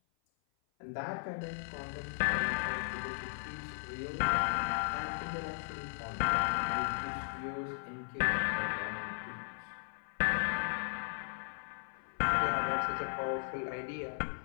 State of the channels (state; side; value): silent; right; 53 dB below the other